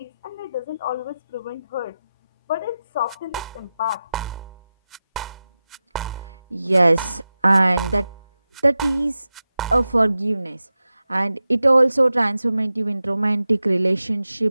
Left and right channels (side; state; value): both; inverted; correlation -0.93